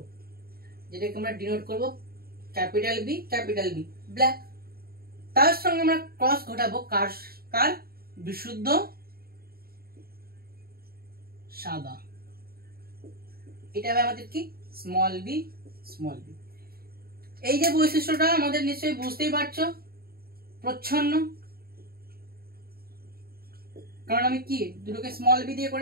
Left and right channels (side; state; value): left; late; 0.44 ms